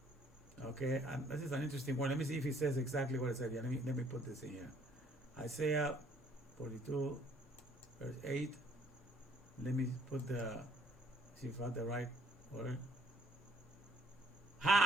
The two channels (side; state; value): both; normal; correlation 0.65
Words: Okay, and this is an interesting one. Let me see if he says exactly what it said here. Let me put this in here. Isaiah 42, verse 8. Let me put see if I have the right word.